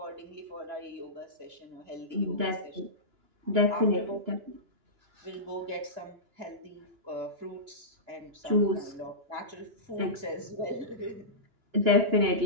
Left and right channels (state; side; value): late; left; 2.9 ms